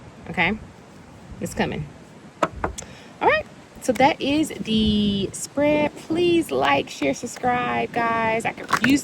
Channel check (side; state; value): both; identical; correlation 1.00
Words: Okay? It's coming. All right. So that is the spread. Please like, share, subscribe, guys. I could use